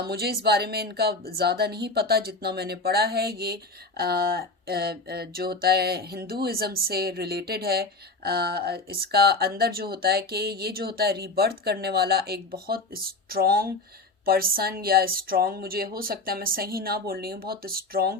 इस बारे में इनका ज़्यादा नहीं पता, जितना मैंने पढ़ा है ये जो होता है हिंदुइज़्म से रिलेटेड है। इसका अंदर जो होता है कि ये जो होता है रीबर्थ करने वाला एक बहुत स्ट्रॉन्ग पर्सन, या स्ट्रॉन्ग, मुझे हो सकता है मैं सही ना बोल रही हूँ, बहुत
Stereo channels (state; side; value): quieter; right; 3.3 dB